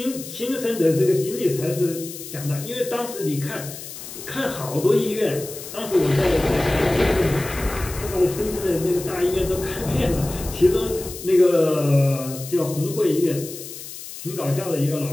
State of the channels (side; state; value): left; noise; hiss, 12 dB below the sound